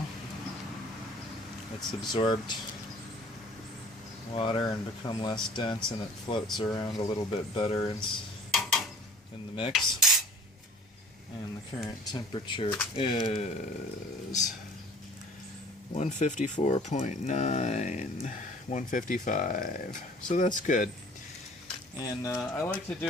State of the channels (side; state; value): both; normal; correlation 0.49